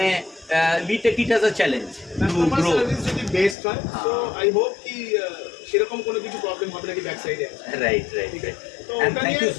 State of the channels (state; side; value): drops out; right; at 3.6 s